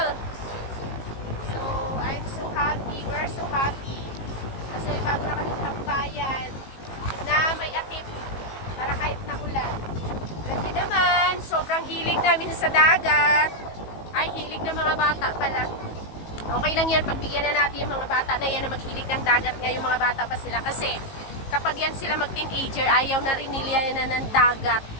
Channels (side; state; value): right; late; 18 ms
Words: So, I'm so happy. We're so happy. Kasi bago na kami tambayan na may atip para kahit nakulan. Kasi naman, sobrang hilig namin sa dagat. Ay, hilig ng mga bata pala. Okay lang yan, pagbigyan na natin yung mga bata na yan na maghilig ng dagat nga yung mga bata pa sila. Kasi kapag yan sila mag-teenager, ayaw na rin nila na ng dagat.